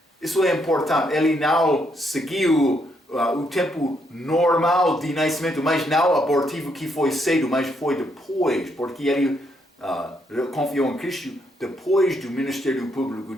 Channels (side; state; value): both; normal; correlation 0.75